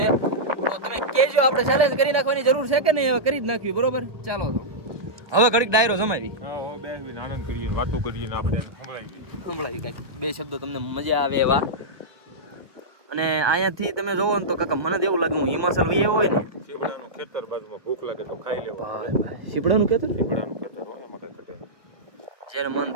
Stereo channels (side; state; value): left; late; 1.2 ms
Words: તો તમે કહેજો આપણે ચેલેન્જ કરી નાખવાની જરૂર છે કે નહીં હવે કરી જ નાખ્યું બરોબર. ચાલો તો હવે ઘડીક ડાયરો જમાવી સંભળાવી કાંઈક બે શબ્દો તમને મજા આવે એવા. અને અહીંયાથી તમે જોવો ને તો કાકા મને તો એવું લાગે હું હિમાચલ વહી હોય ને ખેતર બાજુમાં ભૂખ લાગે તો ખાઈ લેવું. સીપડાનું ખેતર એમાં કઈ ઘટે. જ્યારે મન